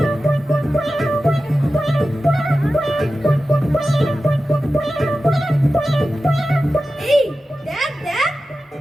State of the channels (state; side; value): normal; both; correlation 0.94